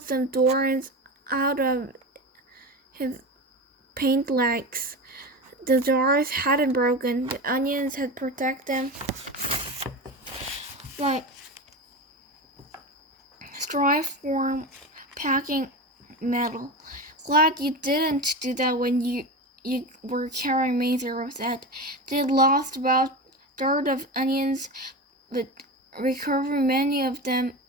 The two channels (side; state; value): both; normal; correlation 0.24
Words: some thorns out of his paint legs. The jars hadn't broken. The onions had protected them like strife-form packing metal. "Glad you didn't do that when you were carrying me," Zero said. They'd lost about a third of onions, but recovered many of them